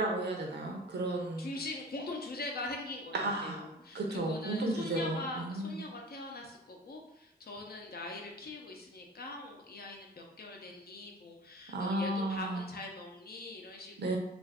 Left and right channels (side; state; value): both; normal; correlation 0.39